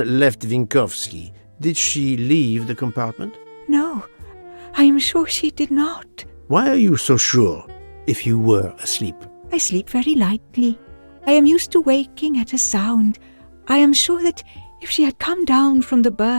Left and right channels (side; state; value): both; inverted; correlation -1.00